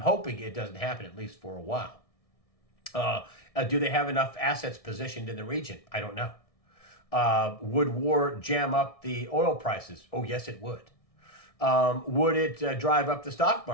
it doesn't happen, at least for a while. Do they have enough assets positioned in the region? I don't know. Would war jam up the oil prices? Oh, yes, it would. Would it drive up the stock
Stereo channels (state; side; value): late; right; 1.6 ms